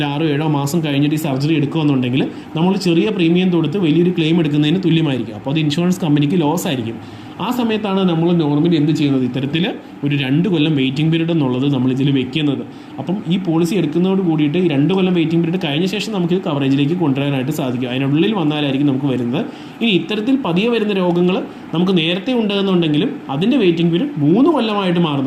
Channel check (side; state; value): both; identical; correlation 1.00